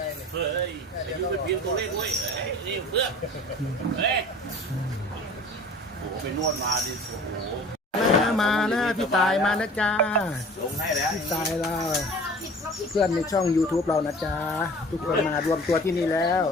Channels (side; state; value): both; normal; correlation 0.43